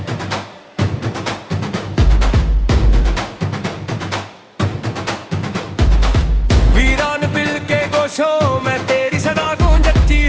खामोशों में तेरी सदा गूंजती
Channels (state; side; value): identical; both; correlation 1.00